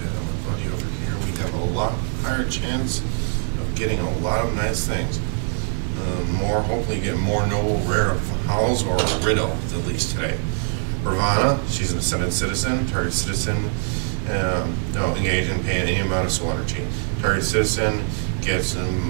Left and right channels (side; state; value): left; silent; digital silence